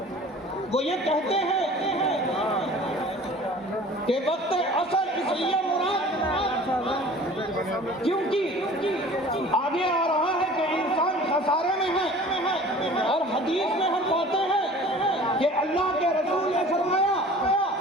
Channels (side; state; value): both; normal; correlation 0.45